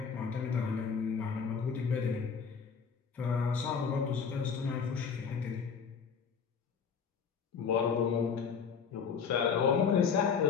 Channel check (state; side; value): quieter; right; 6.2 dB